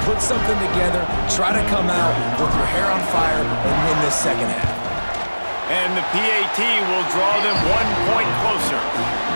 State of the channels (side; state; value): both; inverted; correlation -1.00